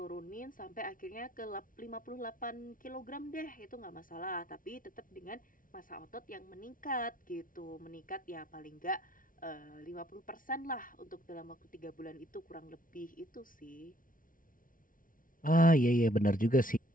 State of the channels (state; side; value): late; right; 0.39 ms